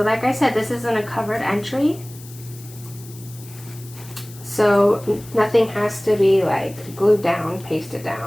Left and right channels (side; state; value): left; noise; hiss, 20 dB below the sound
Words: like I said, this isn't a covered entry. So nothing has to be like glued down, pasted